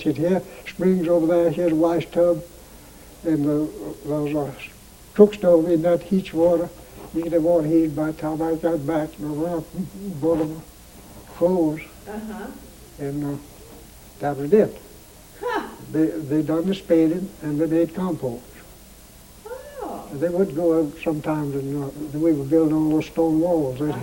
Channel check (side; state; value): both; identical; correlation 1.00